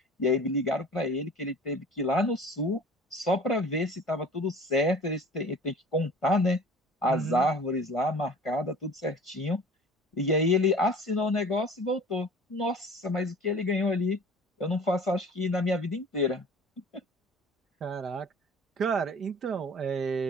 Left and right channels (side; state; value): both; normal; correlation 0.44